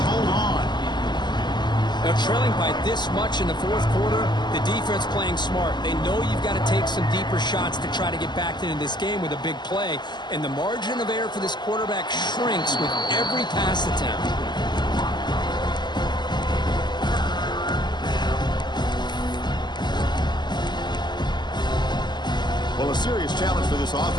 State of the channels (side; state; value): right; late; 0.21 ms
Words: hold on. Now, trailing by this much in the fourth quarter, the defense playing smart. They know you've got to take some deeper shots to try to get back into this game with a big play, and the margin of error for this quarterback shrinks with every pass attempt. Well, a serious challenge for this